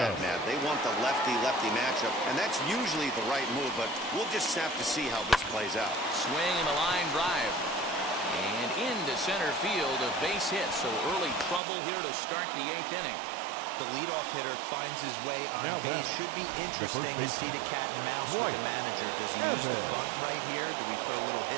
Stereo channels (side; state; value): left; drops out; at 11.6 s